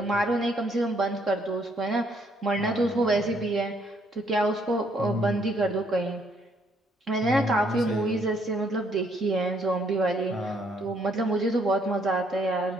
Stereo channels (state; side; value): normal; both; correlation 0.69